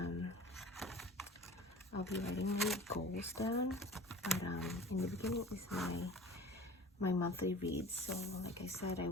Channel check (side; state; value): both; normal; correlation 0.41